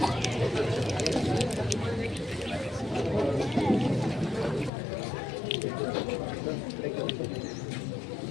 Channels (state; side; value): drops out; right; at 4.7 s